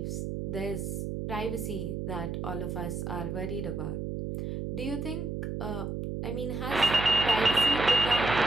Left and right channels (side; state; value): right; noise; hum, 4 dB below the sound